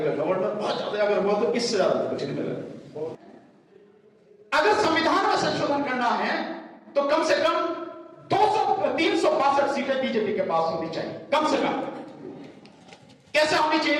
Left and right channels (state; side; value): identical; both; correlation 1.00